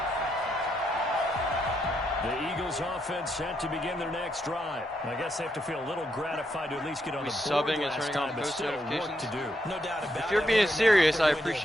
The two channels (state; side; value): normal; both; correlation 0.79